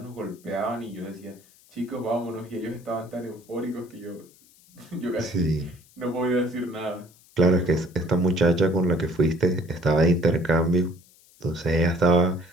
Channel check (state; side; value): noise; left; hiss, 28 dB below the sound